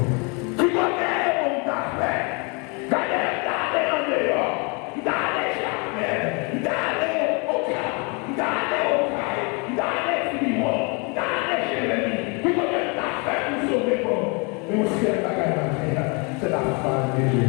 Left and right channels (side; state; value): right; quieter; 32.4 dB